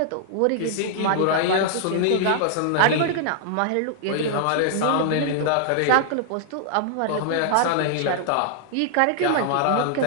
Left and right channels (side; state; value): both; different; correlation -0.01